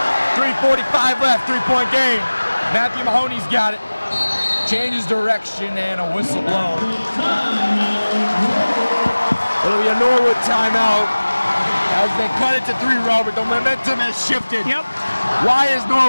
3:45 left, 3-point game. Matthew Mahoney's got it. Changes direction and a whistle blown. It'll be a Norwood timeout as they cut it to 3, Robert. The momentum has shifted. Yep. Why is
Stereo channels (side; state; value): both; inverted; correlation -1.00